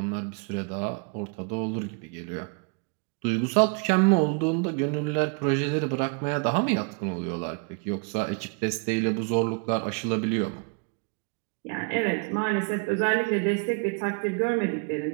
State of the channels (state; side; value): quieter; left; 35.0 dB